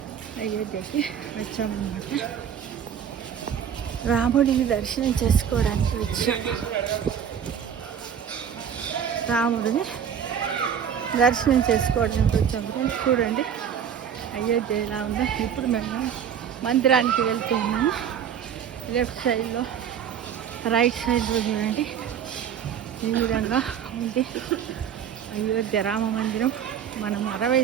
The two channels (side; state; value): left; quieter; 8.4 dB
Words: వచ్చామన్నమాట. రాముడిని దర్శనం చేసుకోవడానికి వచ్చాము. రాముడిని దర్శనం చేసుకోవడానికి వచ్చాము ఫ్రెండ్స్. చూడండి అయోధ్య ఎలా ఉందో. ఇప్పుడు మేము మందిరానికి వెళ్తున్నాము. లెఫ్ట్ సైడ్లో, రైట్ సైడ్లో చూడండి ఈ విధంగా ఉంది అయోధ్య రామ మందిరం. మనం 60